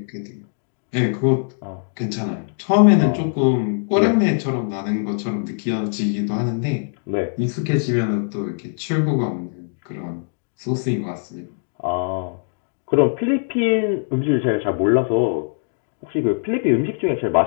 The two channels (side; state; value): right; silent; digital silence